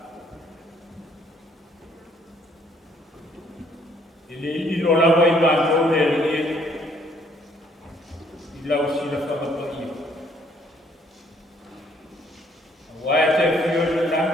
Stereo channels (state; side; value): normal; both; correlation 0.65